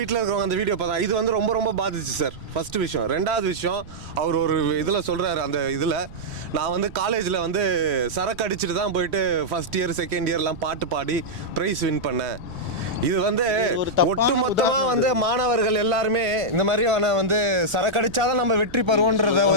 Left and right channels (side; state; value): right; noise; rumble, 18 dB below the sound